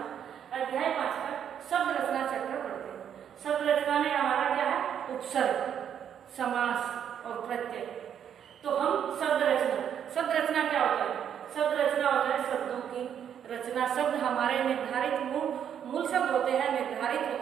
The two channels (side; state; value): left; quieter; 8.9 dB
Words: अध्याय 5 का शब्द रचना चैप्टर पढ़ते हैं। शब्द रचना में हमारा क्या है? उपसर्ग, समास और प्रत्यय। तो हम शब्द रचना क्या होता है? शब्द रचना होता है शब्दों की रचना। शब्द हमारे निर्धारित मूल शब्द होते हैं, निर्धारित